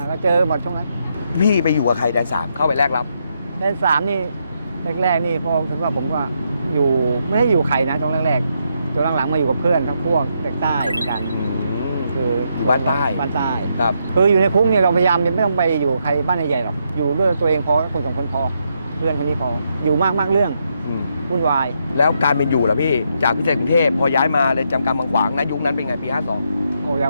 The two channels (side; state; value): both; inverted; correlation -0.79